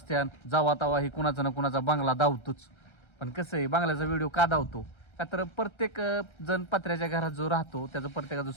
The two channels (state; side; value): late; right; 1.3 ms